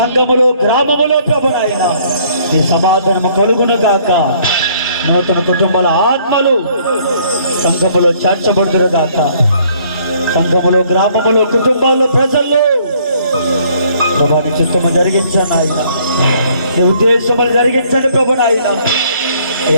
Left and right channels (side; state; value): both; inverted; correlation -0.62